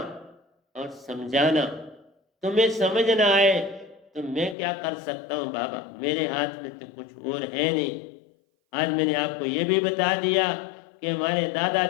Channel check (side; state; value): right; drops out; at 4.5 s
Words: और समझाना। तुम्हें समझ ना आए तो मैं क्या कर सकता हूँ बाबा, मेरे हाथ में तो कुछ और है नहीं। आज मैंने आपको ये भी बता दिया कि हमारे